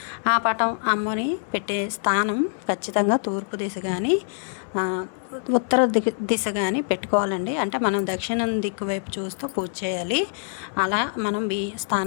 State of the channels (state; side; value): silent; right; digital silence